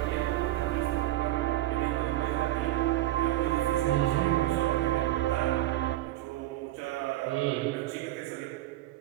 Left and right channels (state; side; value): quieter; left; 15.3 dB